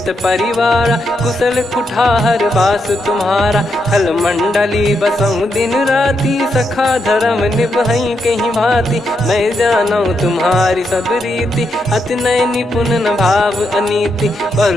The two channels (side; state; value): both; normal; correlation 0.81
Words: परिवारा, कुशल कुठार बास तुम्हारा। खल मंडली बसऊं दिन राती, सखा धर्म निभई कहीं भांति। मैं जानू तुम्हारी सब रीति, अति नय निपुण न भाव अनीति।